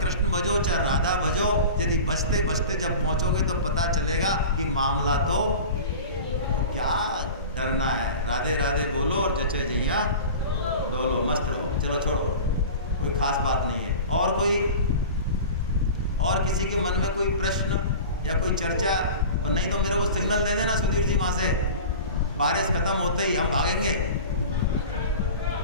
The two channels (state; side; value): inverted; both; correlation -0.35